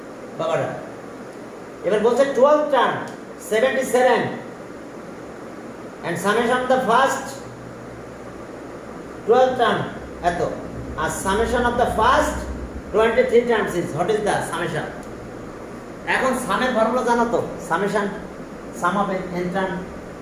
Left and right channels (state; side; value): identical; both; correlation 1.00